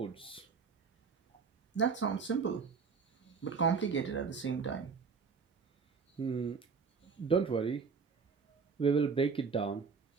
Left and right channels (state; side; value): quieter; left; 5.4 dB